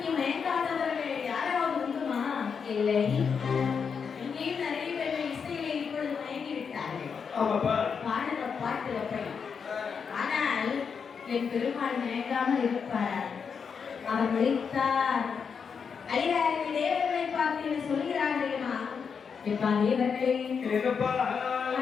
மயங்காதவர்கள் யாராவது உண்டுமா? இல்லை. இங்கேயும் நிறைய பேர் இசையில இப்பொழுது மயங்கி விட்டார்கள். பாடுற பாட்டு அப்படி. ஆனால் என் பெருமாள் மயங்காமல் இருப்பார். அவர் விழித்தார். ஐயாயிரம் தேவர்களை பார்த்து சொல்கிறார்களேமா, எப்பா தேவர்களே,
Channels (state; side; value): quieter; right; 6.2 dB